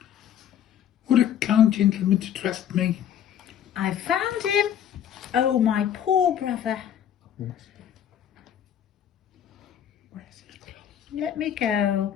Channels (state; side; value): quieter; right; 9.8 dB